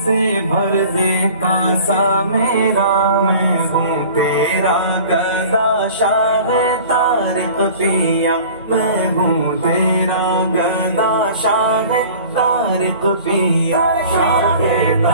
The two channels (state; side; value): inverted; both; correlation -0.44